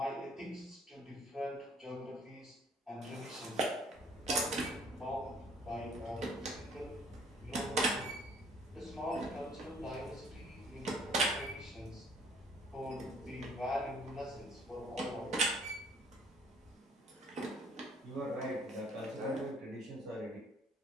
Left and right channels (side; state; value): both; normal; correlation 0.58